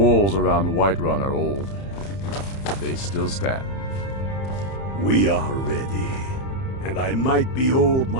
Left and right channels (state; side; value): late; right; 30 ms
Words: around Whiterun are old. They still stand. We are ready. And I might be old